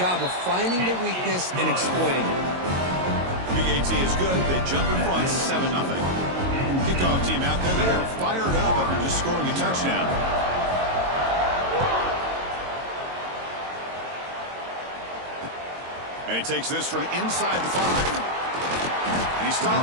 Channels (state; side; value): late; left; 22 ms